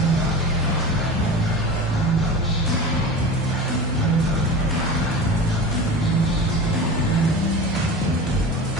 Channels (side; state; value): both; normal; correlation 0.31